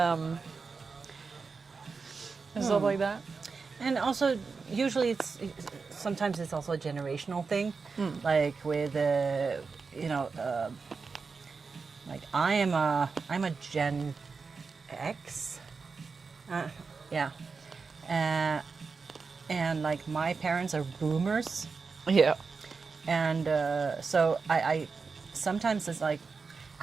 and stuff like that. And also, usually sometimes it's also a generational thing, like with like I'm a Gen X, yeah, and like my parents are boomers, Yeah. and so I sometimes it's like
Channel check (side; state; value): left; quieter; 4.8 dB